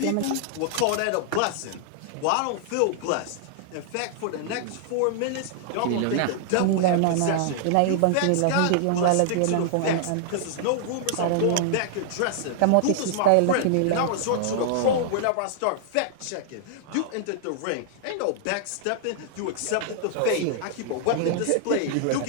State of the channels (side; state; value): both; different; correlation -0.01